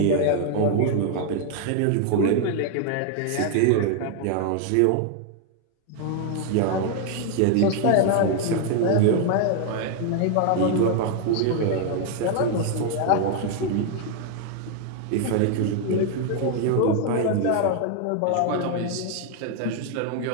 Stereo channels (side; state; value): both; different; correlation 0.00